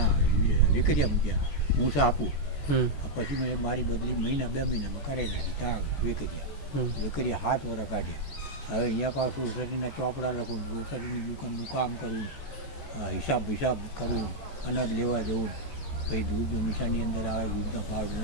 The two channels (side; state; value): right; late; 14 ms